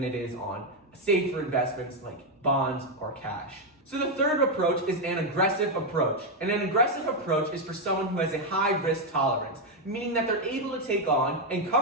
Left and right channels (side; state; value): both; normal; correlation 0.03